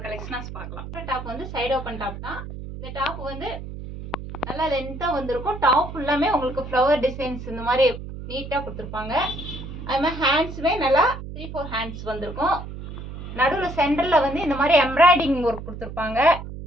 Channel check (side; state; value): right; noise; hum, 10 dB below the sound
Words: கலெக்ஷனாஸ் பார்க்கலாம். டாப் வந்து சைடு ஓப்பன் டாப் தான். இந்த டாப் வந்து நல்லா லென்த்தாக வந்திருக்கும். டாப் ஃபுல்லாமே உங்களுக்கு ஃப்ளவர் டிசைன்ஸ் இந்த மாதிரி நீட்டாக கொடுத்துருப்பாங்க. அது மாதிரி ஹேண்ட்ஸுமே நல்லா 3-4 ஹேண்ட்ஸ் வந்திருக்கும். நடுவில் சென்டரில் வந்து இந்த மாதிரி எம்ப்ராய்டிங் ஒர்க் கொடுத்துருப்பாங்க.